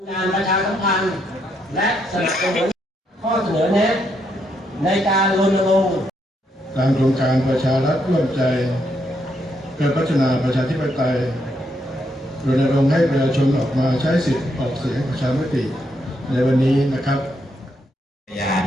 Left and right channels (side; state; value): both; normal; correlation 0.77